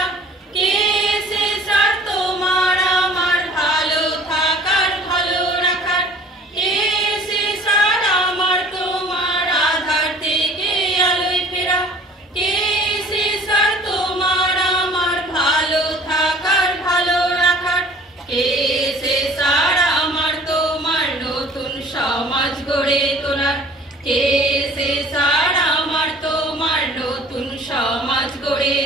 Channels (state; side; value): normal; both; correlation 0.50